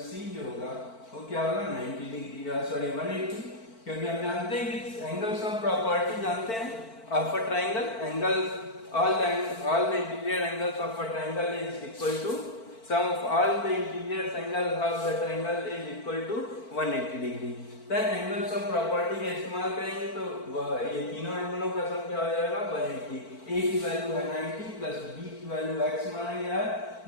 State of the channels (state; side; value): late; right; 4.5 ms